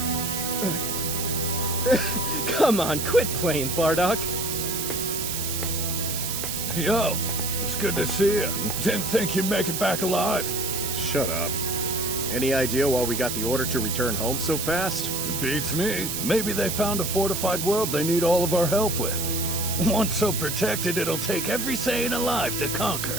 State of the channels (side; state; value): right; noise; hiss, 3 dB below the sound